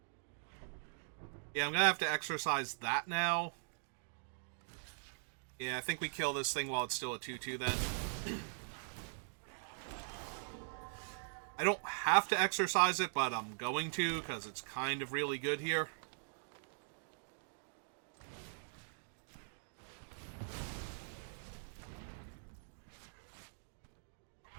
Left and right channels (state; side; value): silent; left; digital silence